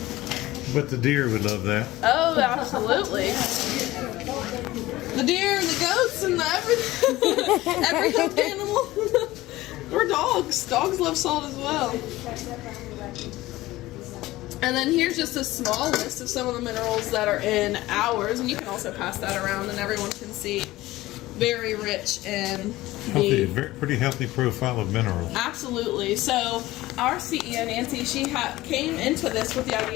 But the deer would love that. Oh, absolutely. The deer and the goats and the everything. Every hoofed animal. Or dogs. Dogs love salt as well. And then here's just a small list of some of the minerals that are in ours. And you can also pass that around and everyone can see. Very rich in Healthy, pretty healthy profile of minerals. Absolutely. So our CEO Nancy, she came into this with the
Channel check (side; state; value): right; quieter; 17.6 dB